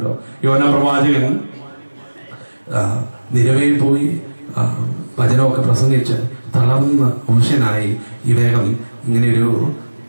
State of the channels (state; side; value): inverted; both; correlation -1.00